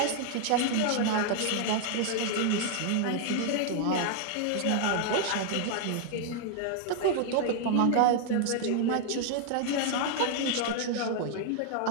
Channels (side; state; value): both; different; correlation 0.00